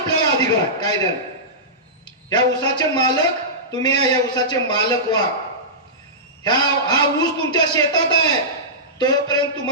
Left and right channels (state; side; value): normal; both; correlation -0.18